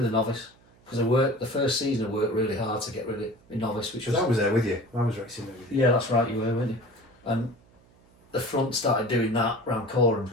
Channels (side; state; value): right; noise; hum, 30 dB below the sound